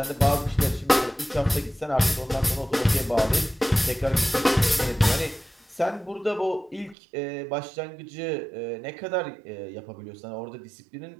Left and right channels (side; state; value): left; drops out; at 7.0 s